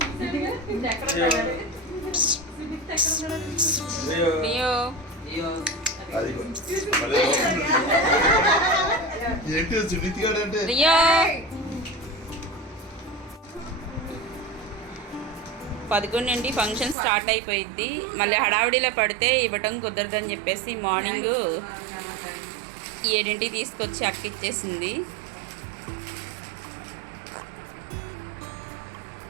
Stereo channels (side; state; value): left; drops out; at 16.9 s